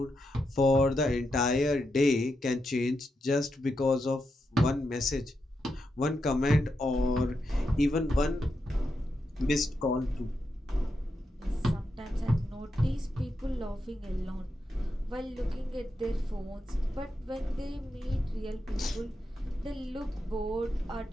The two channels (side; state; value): both; normal; correlation 0.85